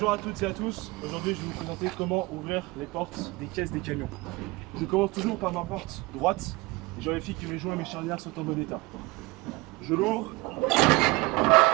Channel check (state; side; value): quieter; left; 23.1 dB